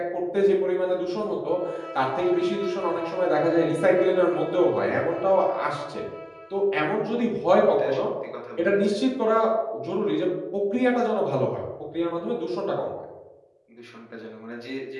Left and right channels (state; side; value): identical; both; correlation 1.00